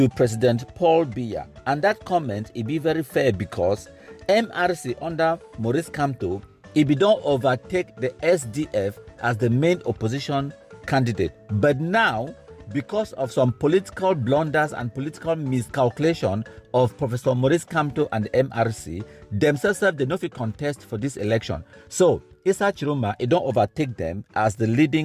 President Paul Biya. And that comment it be very fair because MRC under Maurice Kamto, it be don't overtake the SDF as the main opposition candidate. But now, because of some political blunders and political miscalculation of Professor Maurice Kamto and the MRC, themselves they no fit contest for this election. So Issa Tchiroma it don't overtake them as the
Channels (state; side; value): identical; both; correlation 1.00